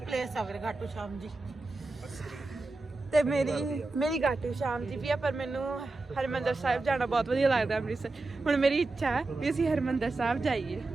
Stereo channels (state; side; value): quieter; left; 3.3 dB